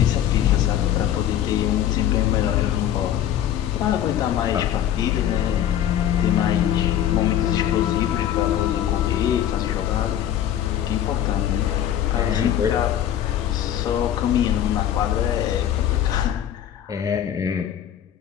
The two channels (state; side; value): quieter; right; 10.8 dB